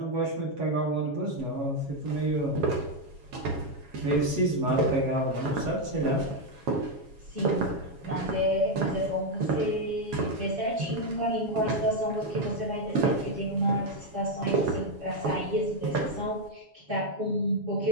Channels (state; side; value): late; left; 7.2 ms